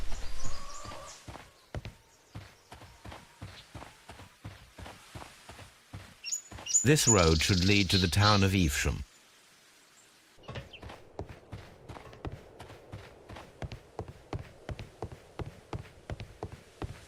This road should lead to the town of Evesham.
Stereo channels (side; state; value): both; identical; correlation 1.00